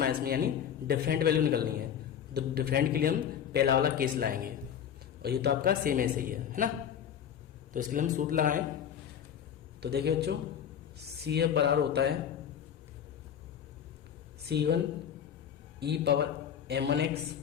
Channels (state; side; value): quieter; right; 9.0 dB